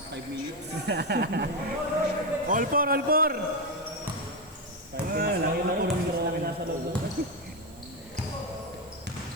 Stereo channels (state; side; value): noise; right; hiss, 24 dB below the sound